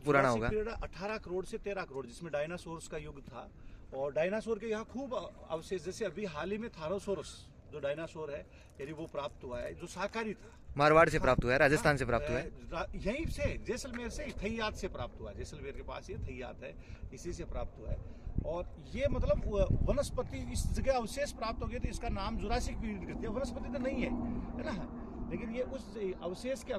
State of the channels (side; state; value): both; identical; correlation 1.00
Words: होगा? 18 करोड़ से 13 करोड़, जिसमें डायनासोर्स का युग था। और डायनासोर के यहाँ खूब अवशेष, जैसे अभी हाल ही में थारोसोरस जो डायनासोर है यानी वो प्राप्त हुआ है, जो शाकाहारी था। मारवाड़ से प्राप्त हुआ है, राजस्थान से प्राप्त हुआ है, यहीं से जैसलमेर से थैयात से प्राप्त हुआ है। जैसलमेर के पास ये थैयात है, इसी से प्राप्त हुआ है। और ये मतलब वनस्पति इस जगह अवशेष प्राप्त हो गए, तो इसका नाम जुरासिक पीरियड करती है। वनस्पति तो नहीं है ना, लेकिन ये उस अवशेष के